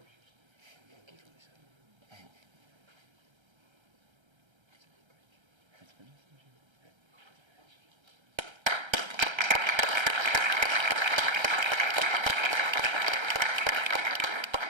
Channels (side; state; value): left; late; 1.3 ms